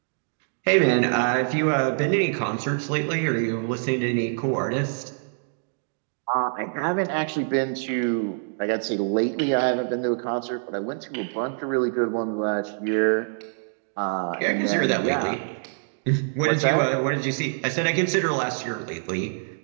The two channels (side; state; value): left; silent; digital silence